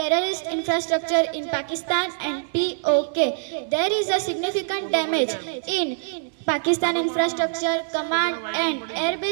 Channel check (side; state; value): left; silent; digital silence